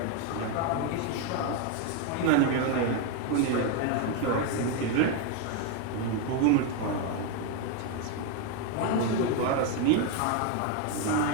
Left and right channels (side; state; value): both; different; correlation 0.02